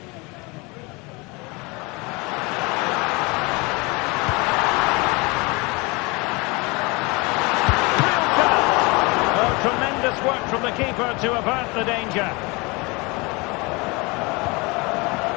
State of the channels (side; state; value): right; quieter; 26.7 dB